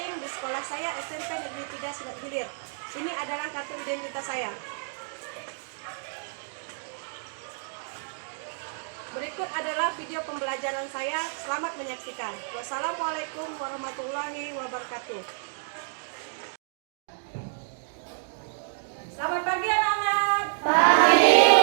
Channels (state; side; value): silent; left; digital silence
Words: di sekolah saya SMP Negeri 3 Silat Hilir. Ini adalah kartu identitas saya. Berikut adalah video pembelajaran saya. Selamat menyaksikan. Wassalamualaikum warahmatullahi wabarakatuh. Selamat pagi anak-anak. Pagi,